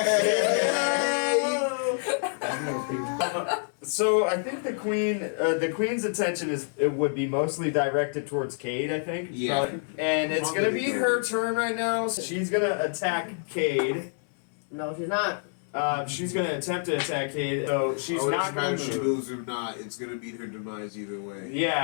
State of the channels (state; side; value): silent; right; digital silence